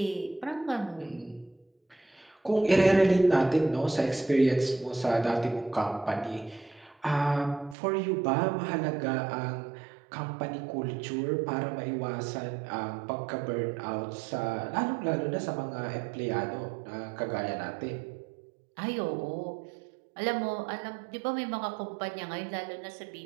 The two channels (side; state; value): left; drops out; at 7.8 s